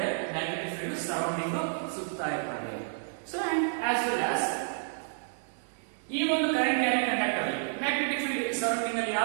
magnetic field surrounding ಸುತ್ತಾ ಇರ್ತದೆ. So and as well as ಈ ಒಂದು ಕರೆಂಟ್ ಕ್ಯಾರಿಂಗ್ ಕಂಡಕ್ಟರ್ ಅಲ್ಲಿ ಮ್ಯಾಗ್ನೆಟಿಕ್ ಫೀಲ್ಡ್ ಸರೌಂಡಿಂಗ್ ಅಲ್ಲಿ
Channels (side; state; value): left; silent; digital silence